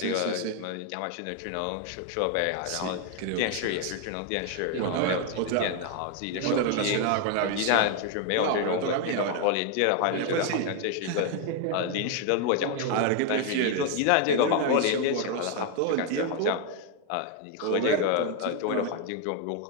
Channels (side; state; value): both; different; correlation 0.01